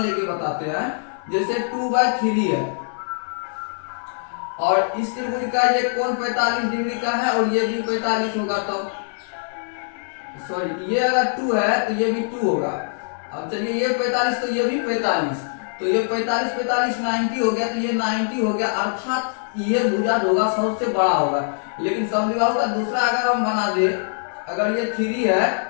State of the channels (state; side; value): silent; right; 64 dB below the other